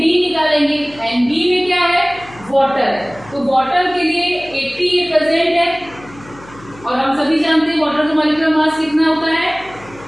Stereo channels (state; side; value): noise; left; hum, 21 dB below the sound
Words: निकालेंगे, Nb में क्या है वाटर है, तो वाटर के लिए 80 ये प्रेजेंट है, और हम सभी जानते हैं वाटर का मॉलिक्यूलर मास कितना होता है,